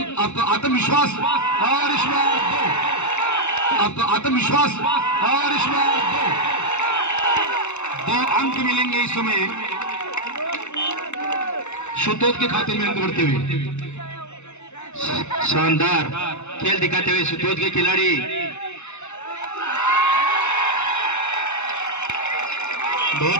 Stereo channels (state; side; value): late; right; 0.82 ms